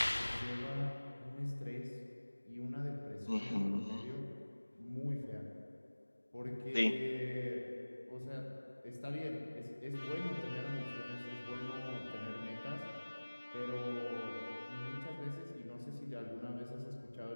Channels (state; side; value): inverted; both; correlation -1.00